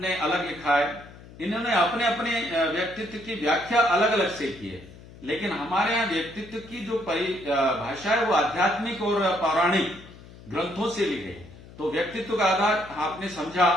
अलग लिखा है, इन्होंने अपने अपने व्यक्तित्व की व्याख्या अलग अलग से की है। लेकिन हमारे यहाँ व्यक्तित्व की जो परिभाषा है वो आध्यात्मिक और पौराणिक ग्रंथों से ली गई। तो व्यक्तित्व का आधार आपने समझा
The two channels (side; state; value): left; noise; hum, 19 dB below the sound